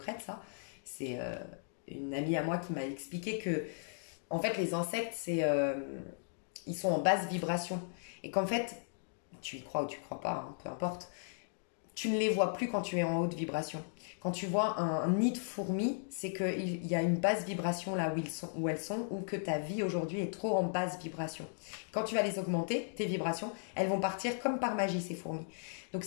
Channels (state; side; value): silent; right; digital silence